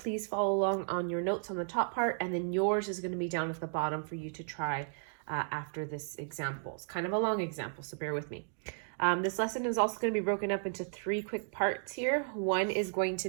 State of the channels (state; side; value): silent; left; digital silence